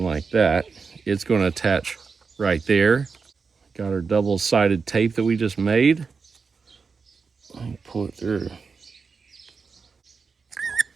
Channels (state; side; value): quieter; left; 5.1 dB